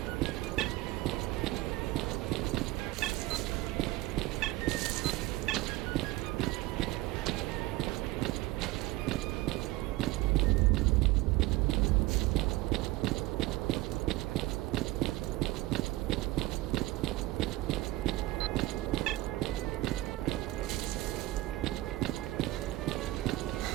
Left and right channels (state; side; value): quieter; left; 18.9 dB